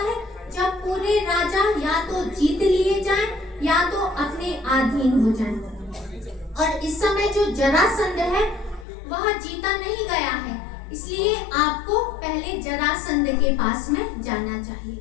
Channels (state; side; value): drops out; right; at 8.8 s